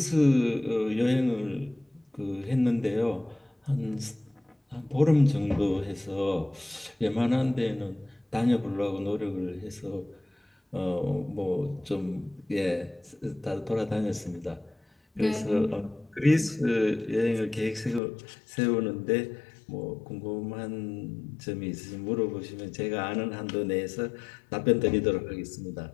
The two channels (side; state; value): right; drops out; at 18.0 s